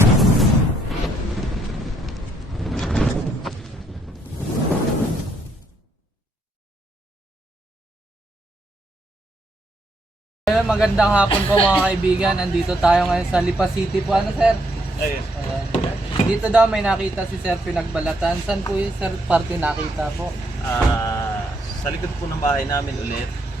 Magandang hapon po mga kaibigan. Andito tayo ngayon sa Lipa City po. Ano sir? Ayun. Dito daw may nakita si sir pinagbalatan. Saan po yung sir party nakita po? Sa likod po ng bahay namin ulit.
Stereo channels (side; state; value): both; normal; correlation 0.74